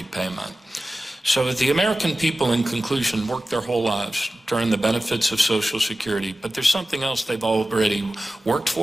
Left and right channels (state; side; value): normal; both; correlation 0.95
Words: So the American people, in conclusion, work their whole lives to earn the benefits of Social Security, but there's something else they've already worked